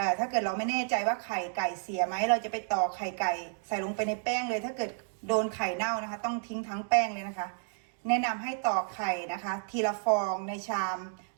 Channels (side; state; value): left; silent; 57 dB below the other